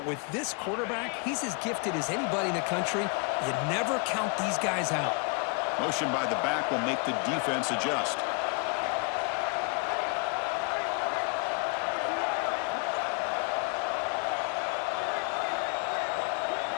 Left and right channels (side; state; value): right; quieter; 34.1 dB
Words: with this quarterback, he's as gifted as anybody in the country. You never count these guys out. Motion by the back will make the defense adjust.